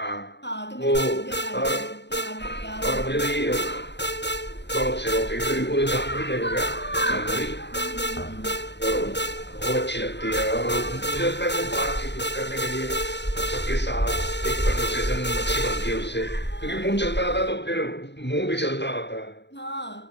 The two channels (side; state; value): right; late; 0.51 ms